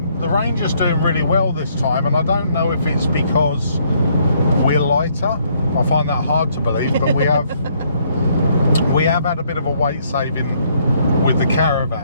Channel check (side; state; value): both; inverted; correlation -0.68